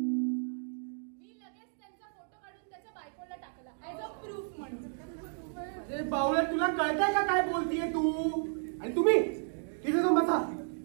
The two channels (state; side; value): silent; left; 56 dB below the other